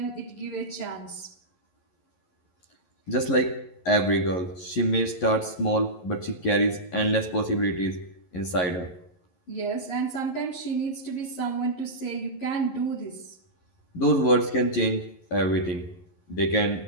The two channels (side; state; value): right; late; 11 ms